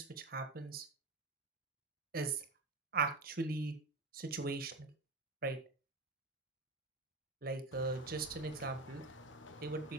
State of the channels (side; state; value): left; quieter; 3.3 dB